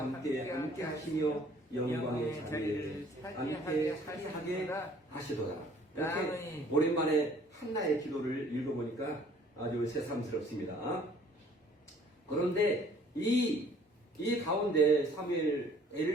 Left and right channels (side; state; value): both; normal; correlation 0.56